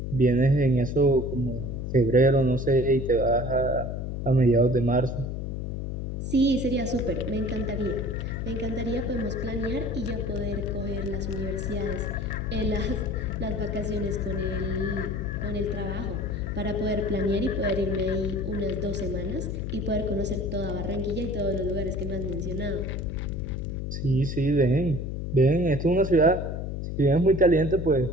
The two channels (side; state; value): left; noise; hum, 4 dB below the sound